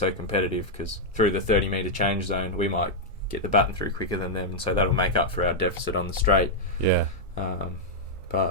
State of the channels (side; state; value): both; normal; correlation -0.04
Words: competitive, because through the 30-metre change zone we might get the baton through quicker than them, and so that'll make up for our deficit on the straight. Yeah.